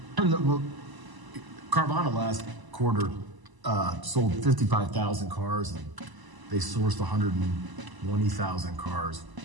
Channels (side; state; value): left; late; 1.0 ms